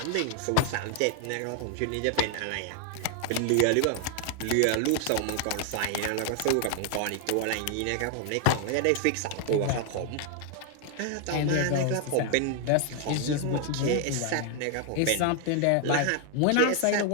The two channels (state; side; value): different; both; correlation 0.00